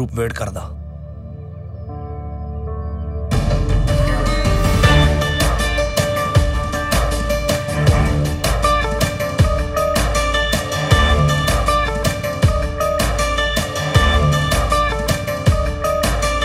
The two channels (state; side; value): identical; both; correlation 1.00